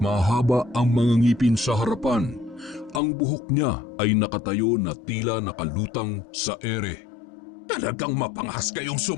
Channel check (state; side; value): drops out; right; at 3.0 s